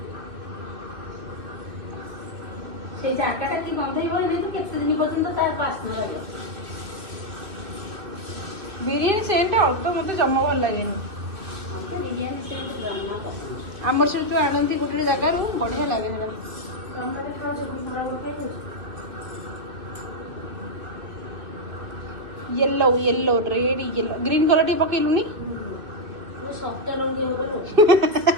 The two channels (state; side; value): late; left; 2.7 ms